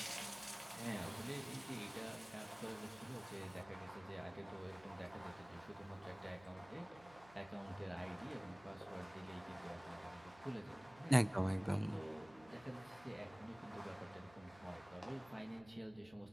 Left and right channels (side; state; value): right; noise; hum, 22 dB below the sound